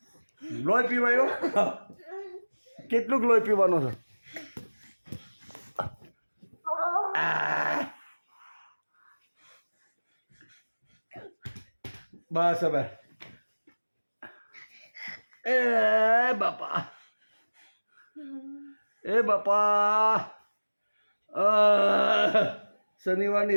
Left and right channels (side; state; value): both; inverted; correlation -1.00